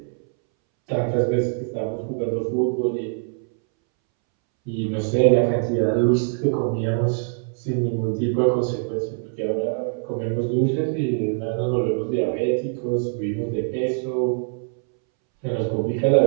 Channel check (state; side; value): silent; left; 63 dB below the other